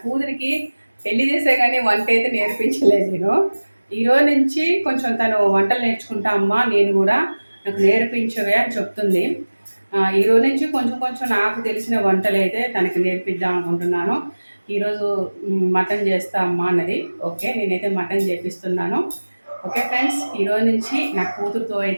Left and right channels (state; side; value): inverted; both; correlation -1.00